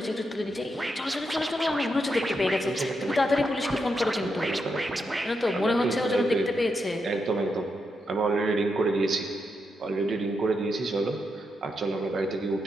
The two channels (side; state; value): both; normal; correlation 0.83